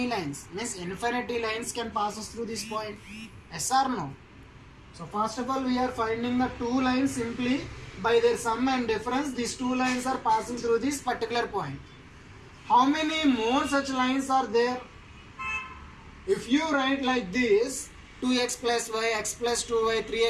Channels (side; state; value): both; identical; correlation 1.00